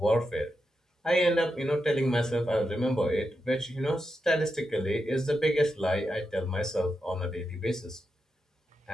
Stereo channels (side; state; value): both; normal; correlation 0.86